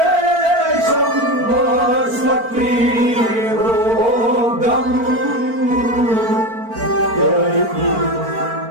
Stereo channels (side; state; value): left; late; 4.4 ms